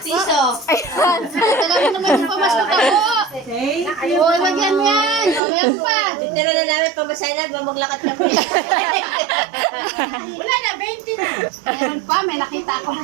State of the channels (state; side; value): drops out; left; at 5.4 s